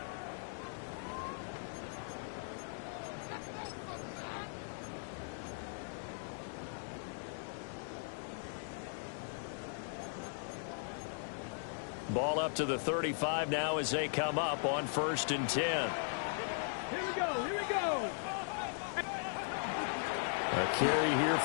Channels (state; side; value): silent; right; digital silence